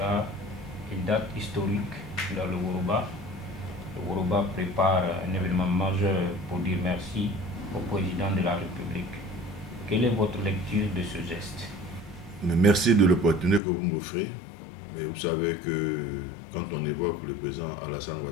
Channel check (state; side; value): drops out; right; at 13.6 s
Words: une date historique dans le Woroba. Le Woroba prépare un événement majeur pour dire merci au président de la République. Quelle est votre lecture de ce geste? Merci de l'opportunité que vous m'offrez. Mais vous savez que quand on évoque le président Alassane